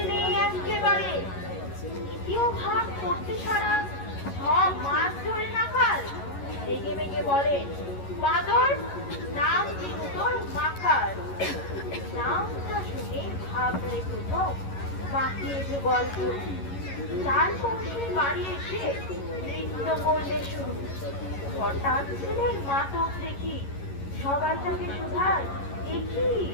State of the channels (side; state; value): right; late; 11 ms